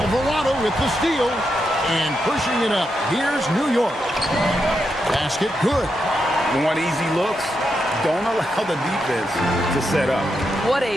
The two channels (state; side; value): normal; both; correlation 0.84